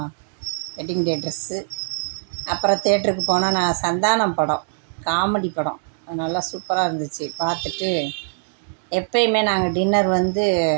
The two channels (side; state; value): left; silent; digital silence